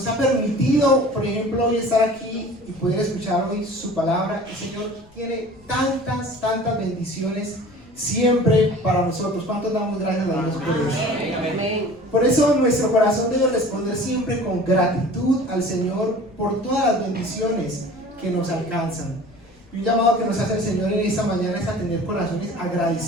ha permitido, por ejemplo, hoy estar aquí y poder escuchar hoy su palabra. El Señor tiene tantas bendiciones siempre para nosotros. ¿Cuántos damos gracias a Dios por eso? Amén. Por eso nuestro corazón debe responder siempre con gratitud al Señor por todas las bendiciones que nos alcanzan. Y un llamado que nos hace el Señor en esta mañana es a tener corazones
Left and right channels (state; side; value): noise; left; rumble, 27 dB below the sound